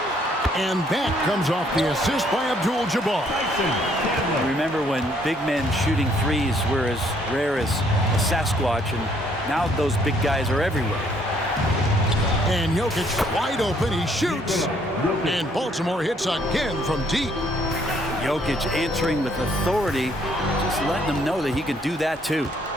And that comes off the assist by Abdul-Jabbar. Remember when big men shooting threes were as rare as a Sasquatch, and now those big guys are everywhere. And Jokic wide open. He shoots. And Baltimore hits again from deep. Jokic answering with authority, just letting them know that he can do that too.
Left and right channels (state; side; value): normal; both; correlation 0.66